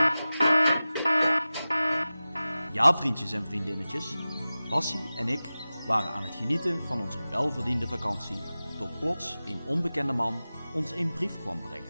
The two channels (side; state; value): both; inverted; correlation -0.96